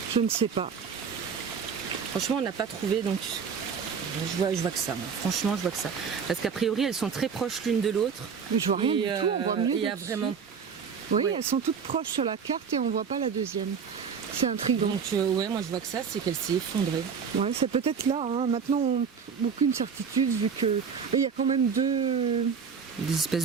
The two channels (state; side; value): quieter; left; 6.4 dB